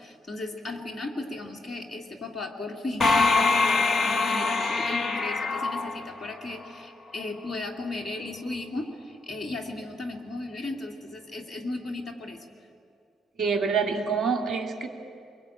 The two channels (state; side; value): normal; both; correlation 0.76